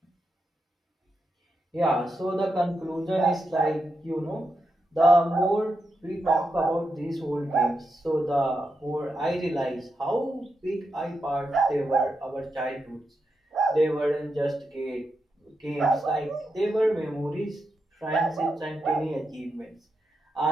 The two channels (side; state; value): both; normal; correlation 0.86